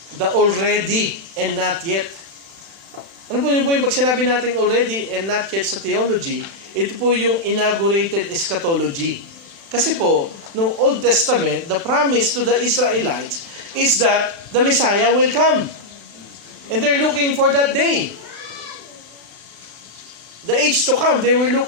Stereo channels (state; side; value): late; left; 35 ms